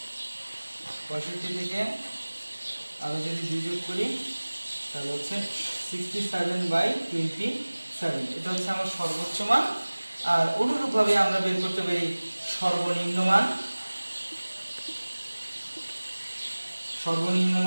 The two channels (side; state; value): both; inverted; correlation -1.00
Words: 65 থেকে আমি যদি 2 যোগ করি তাহলে হচ্ছে 67/27। এটা হচ্ছে আমার সর্বোচ্চ মান। আর অনুরূপভাবে আমরা বের করতে পারি সর্বনিম্ন মান। সর্বনিম্ন